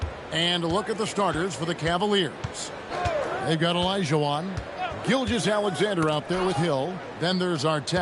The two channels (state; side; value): identical; both; correlation 1.00